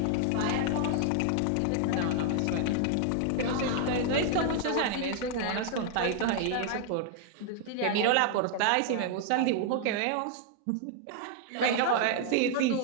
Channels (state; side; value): different; both; correlation 0.00